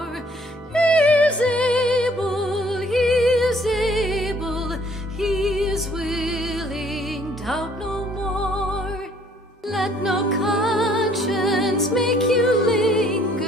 He is able, he is able, he is willing, doubt no more. Let no conscience make you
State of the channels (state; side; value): normal; both; correlation 0.61